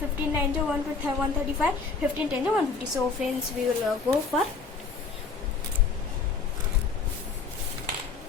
9 135, 15 10 150. So friends, we will go for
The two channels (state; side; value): quieter; right; 4.7 dB